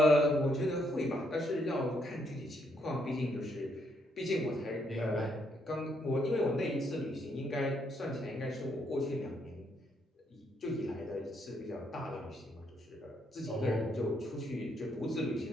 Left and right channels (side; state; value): both; normal; correlation 0.74